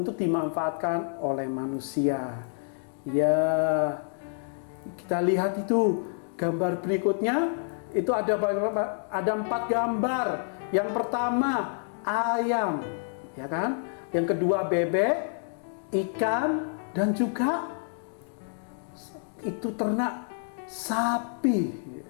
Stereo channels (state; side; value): silent; right; digital silence